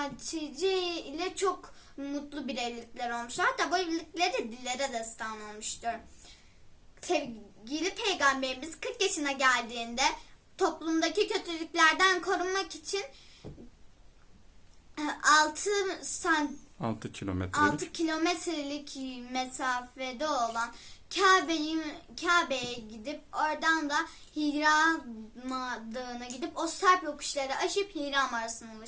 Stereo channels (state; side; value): identical; both; correlation 1.00